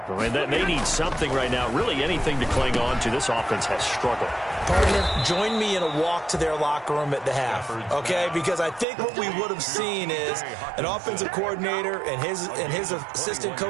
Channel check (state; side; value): drops out; left; at 8.8 s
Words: I mean, they need something right now, really anything to cling on to. This offense has struggled. Partner, join me in a walk to their locker room at the half, okay? Because I think what we would have seen is an offensive coordinator and his assistant